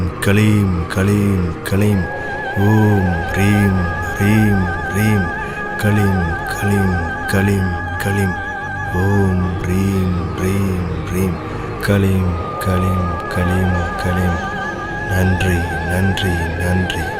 களீம் களீம் களீம். ஓம் ரீம் ரீம் ரீம் களீம் களீம் களீம் களீம். ஓம் ரீம் ரீம் ரீம் களீம் களீம் களீம் களீம். நன்றி நன்றி நன்றி.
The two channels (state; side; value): identical; both; correlation 1.00